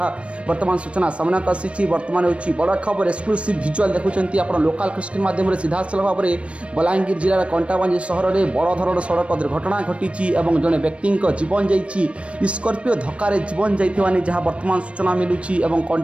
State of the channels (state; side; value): late; left; 0.061 ms